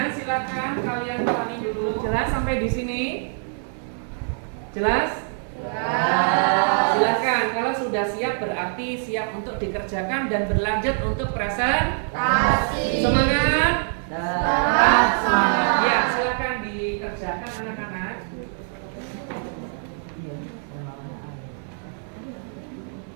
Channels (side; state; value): left; silent; 62 dB below the other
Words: silahkan kalian ulangi dulu. Jelas sampai di sini? Jelas? Silakan, kalau sudah siap berarti siap untuk dikerjakan dan berlanjut untuk presentasi. Semangat? Semangat. Ya, silakan dikerjakan anak-anak. Iya,